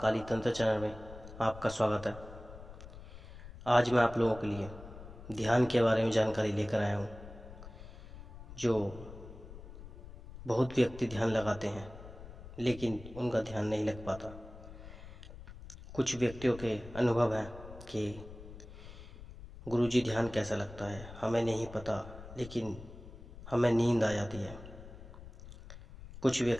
तंत्र चैनल में आपका स्वागत है। आज मैं आप लोगों के लिए ध्यान के बारे में जानकारी लेकर आया हूँ। जो बहुत व्यक्ति ध्यान लगाते हैं लेकिन उनका ध्यान नहीं लग पाता। कुछ व्यक्तियों के अनुभव है कि गुरुजी ध्यान कैसा लगता है हमें नहीं पता, लेकिन हमें नींद आ जाती है। कुछ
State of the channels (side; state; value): left; noise; rumble, 15 dB below the sound